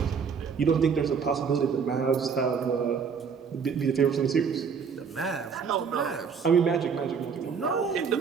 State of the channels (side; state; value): left; quieter; 6.2 dB